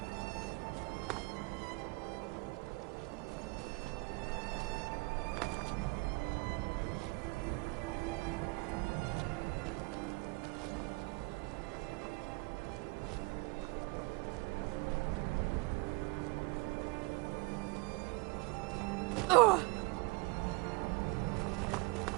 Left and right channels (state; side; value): quieter; left; 26.8 dB